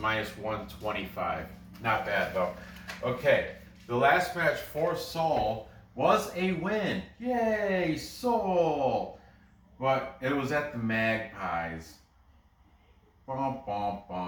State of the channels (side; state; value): both; identical; correlation 1.00